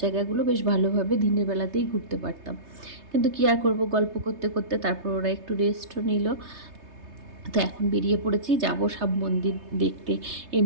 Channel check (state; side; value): late; left; 3.3 ms